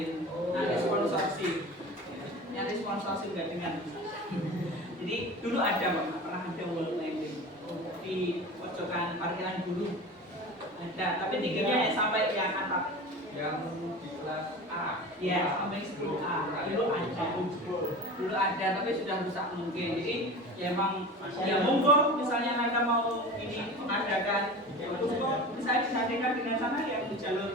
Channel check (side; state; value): both; normal; correlation 0.34